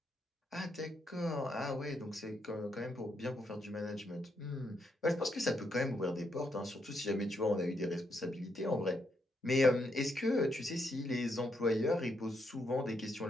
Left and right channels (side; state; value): both; normal; correlation 0.78